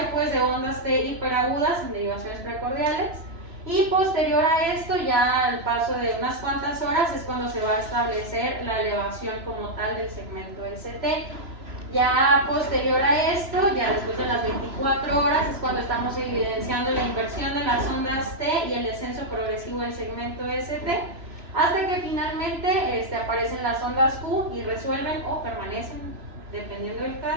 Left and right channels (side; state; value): left; late; 3.0 ms